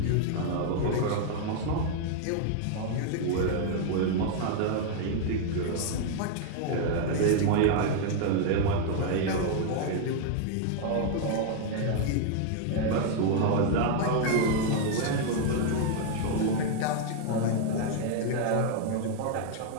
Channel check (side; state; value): both; different; correlation 0.00